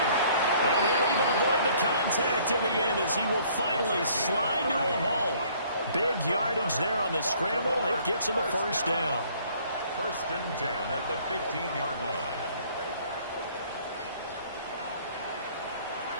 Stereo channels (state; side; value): inverted; both; correlation -0.58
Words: And he'll even avoid the contact in the end as he will finally slide to a halt. Big yardage there on the scramble. It gets him a first down. 1st and 10 at the 15-yard line.